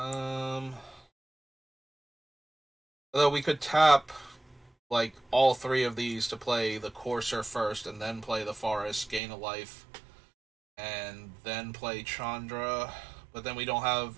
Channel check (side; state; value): left; drops out; at 9.2 s